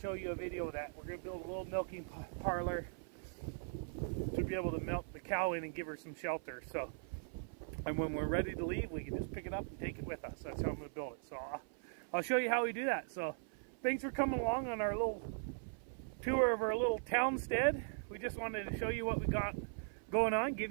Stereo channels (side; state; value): left; silent; 51 dB below the other